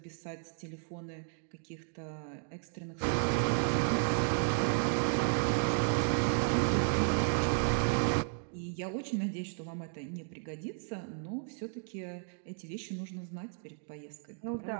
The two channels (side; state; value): left; silent; 55 dB below the other